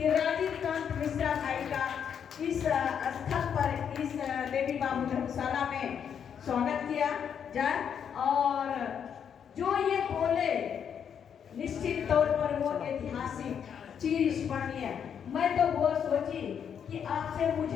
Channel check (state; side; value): quieter; right; 7.9 dB